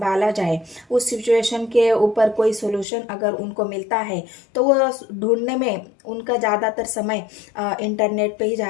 जाए, उस सिचुएशन के ऊपर कोई सोल्यूशन अगर उनको मिलता है तो वो ढूंढने में उनका ज़्यादातर समय इंटरनेट पे ही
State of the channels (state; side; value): drops out; right; at 2.9 s